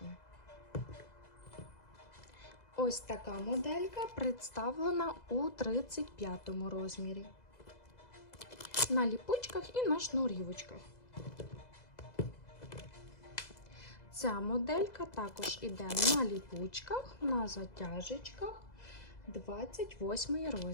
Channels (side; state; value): right; late; 2.0 ms